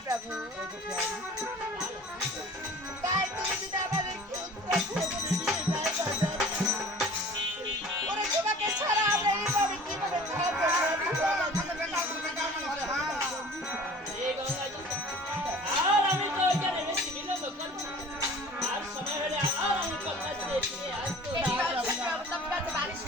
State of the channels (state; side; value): normal; both; correlation 0.45